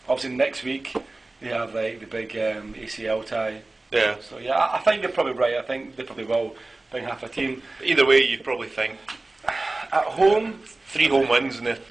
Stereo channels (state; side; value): quieter; left; 3.0 dB